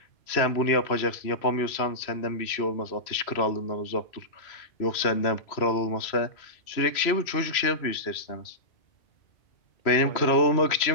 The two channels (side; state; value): right; late; 3.0 ms